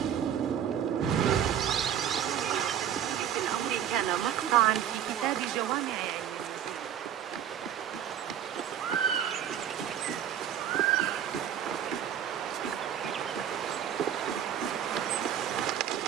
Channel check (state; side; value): quieter; left; 9.6 dB